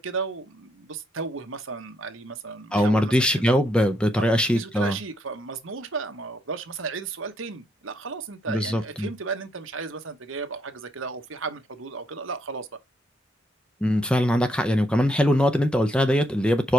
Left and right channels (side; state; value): both; normal; correlation 0.75